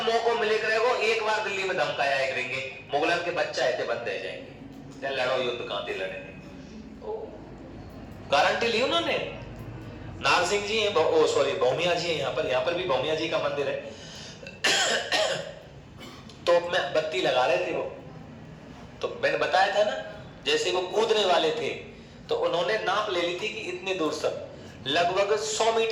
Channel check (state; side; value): identical; both; correlation 1.00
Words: मौका मिले करेगो एक बार दिल्ली में धमकाया करेंगे, मुगलन के बच्चा ऐसे बंद रह जाएंगे, लड़ो युद्ध कहां थे लड़ेंगे। गारंटी ली उन्होंने। नारसिंह जी है, सॉरी भौमिया जी है, यहाँ पर भी भौमिया जी का मंदिर है। तोप में बत्ती लगा रहे थे वो, तो मैंने बताया था ना, जैसे वो कूदने वाले थे तो उन्होंने नाप ले ली थी कि इतने दूर तक लगभग 100